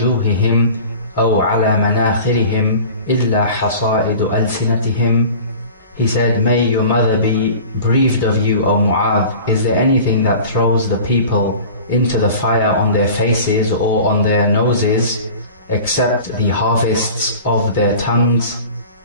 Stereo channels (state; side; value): inverted; both; correlation -0.40